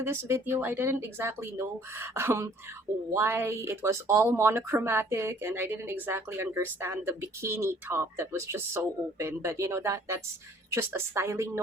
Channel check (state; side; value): normal; both; correlation 0.57